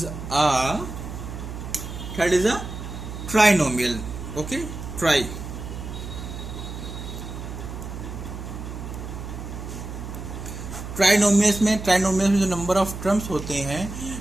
trinomial. Okay, trinomials में जो number of terms होते हैं,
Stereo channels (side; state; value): right; noise; hum, 9 dB below the sound